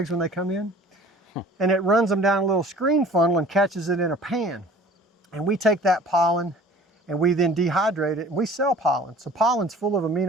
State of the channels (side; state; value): both; normal; correlation 0.47